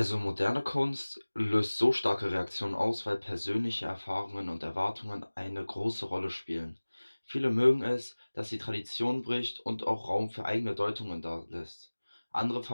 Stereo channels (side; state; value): both; inverted; correlation -1.00